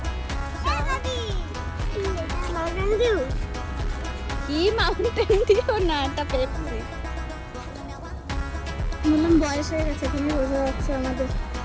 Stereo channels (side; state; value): both; identical; correlation 1.00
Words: কি মাউন্টেন ডিউ না, এটা পেপসি। বললাম বয়স হয়ে গেছে, তুমি বোঝা যাচ্ছে আমাদের।